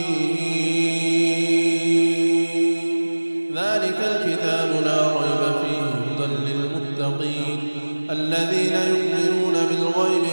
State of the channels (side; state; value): both; inverted; correlation -1.00